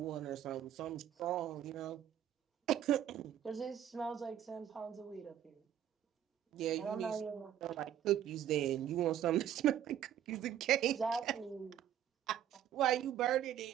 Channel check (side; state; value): left; quieter; 10.5 dB